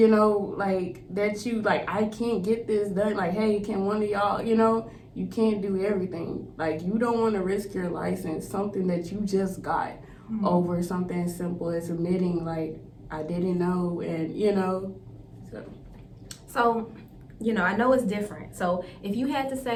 know, like that you like, I can't get this done. Like, hey, can one of y'all, you know, you can't do everything. Like, you don't want to risk your license, something that you just got, over something as simple as admitting, like, I didn't know, and you know. So, you know, I know it's different. So if you had to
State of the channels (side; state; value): both; identical; correlation 1.00